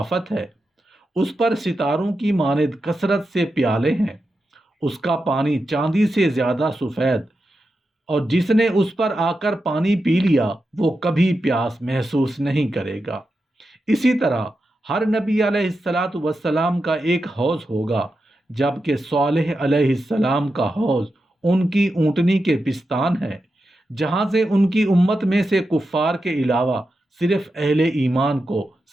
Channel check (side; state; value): both; normal; correlation 0.89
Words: ہے۔ اس پر ستاروں کی مانند کثرت سے پیالے ہیں۔ اس کا پانی چاندی سے زیادہ سفید، اور جس نے اس پر آ کر پانی پی لیا وہ کبھی پیاس محسوس نہیں کرے گا۔ اسی طرح ہر نبی علیہ السلام کا ایک حوض ہوگا، جبکہ صالح علیہ السلام کا حوض ان کی اونٹنی کے پستان ہے، جہاں سے ان کی امت میں سے کفار کے علاوہ صرف اہل ایمان کو